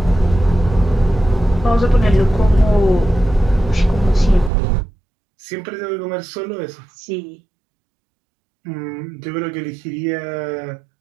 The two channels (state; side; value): drops out; left; at 4.5 s